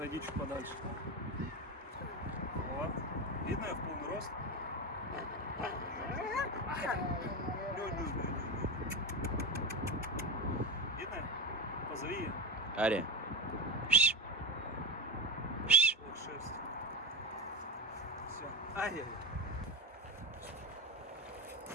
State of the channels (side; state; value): both; normal; correlation 0.18